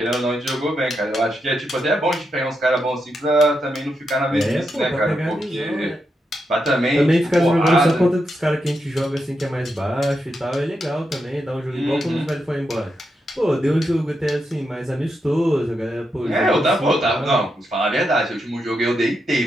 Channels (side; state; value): both; normal; correlation 0.84